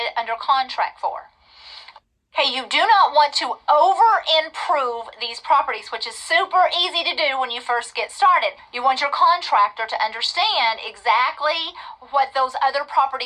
under contract for. Okay, you do not want to over-improve these properties, which is super easy to do when you first get started. You want your contractor to understand exactly what those other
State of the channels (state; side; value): identical; both; correlation 1.00